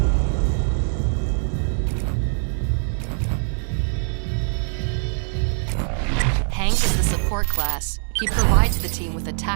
Hank is the support class. He provides the team with a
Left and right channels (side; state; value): left; silent; 64 dB below the other